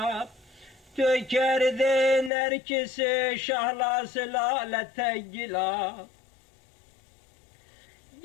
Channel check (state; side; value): drops out; right; at 2.3 s